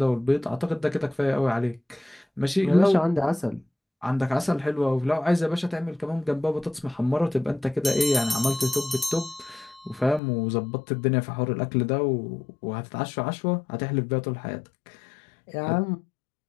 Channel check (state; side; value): drops out; right; at 10.2 s